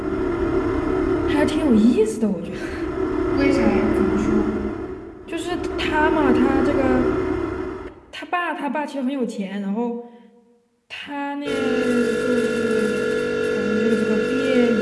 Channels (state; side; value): identical; both; correlation 1.00